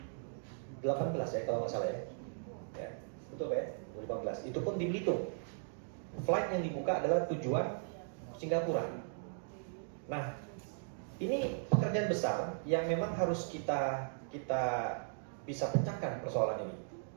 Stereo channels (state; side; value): silent; left; digital silence